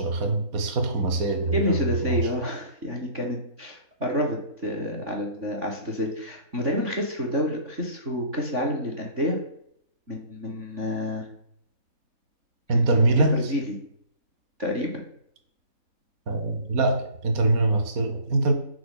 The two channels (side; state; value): left; late; 4.2 ms